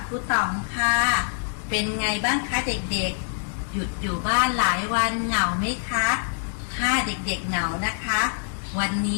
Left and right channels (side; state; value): right; silent; digital silence